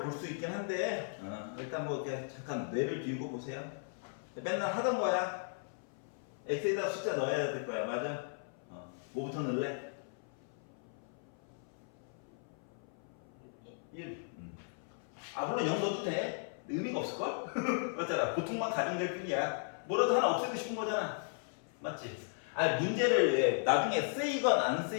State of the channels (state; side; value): silent; right; 53 dB below the other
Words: 수 있긴 한데 일단 뭐 그냥 잠깐 뇌를 비우고 보세요. 맨날 하던 거야. x에다 숫자 넣어야 될 거야. 맞아? 뭐부터 넣을래? 1. 물론 0 넣어도 돼. 의미가 없을걸? 맞잖아. 보통만 가정될 뿐이야. 뭐라도 하나 없애고 싶은 거잖아. 맞지? 문제를 나중에 쓰이건 안